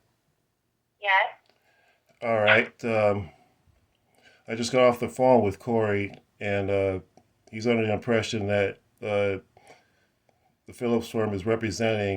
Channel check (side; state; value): both; identical; correlation 1.00